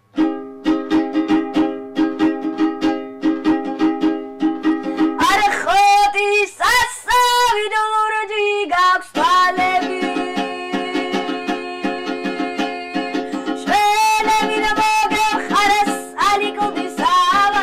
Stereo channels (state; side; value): identical; both; correlation 1.00